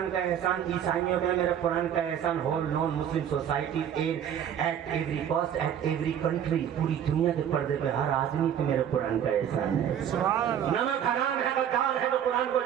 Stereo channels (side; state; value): left; quieter; 9.3 dB